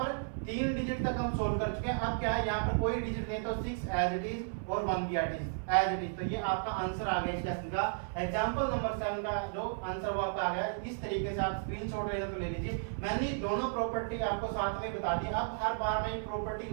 3 डिजिट तक हम सोल्व कर चुके हैं। अब क्या है, यहाँ पर कोई डिजिट नहीं तो 6 एज इट इज और 1 भी एज इट इज। तो ये आपका आंसर आ गया इस क्वेश्चन का। एग्जांपल नंबर 7 का जो आंसर वो आपका आ गया। इस तरीके से आप स्क्रीनशॉट लेना तो ले लीजिए। मैंने दोनों प्रॉपर्टी आपको साथ में बता दी। अब हर बार मैं प्रॉपर्टी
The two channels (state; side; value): silent; left; 55 dB below the other